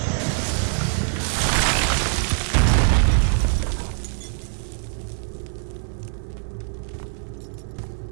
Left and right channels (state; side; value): silent; left; 63 dB below the other